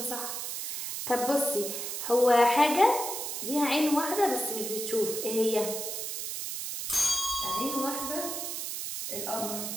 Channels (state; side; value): noise; right; hiss, 4 dB below the sound